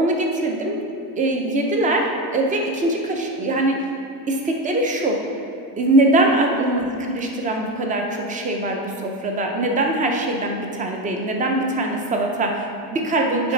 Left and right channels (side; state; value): both; normal; correlation 0.16